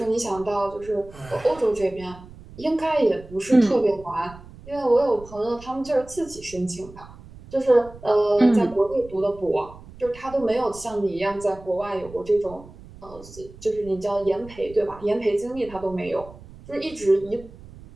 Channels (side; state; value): right; noise; rumble, 19 dB below the sound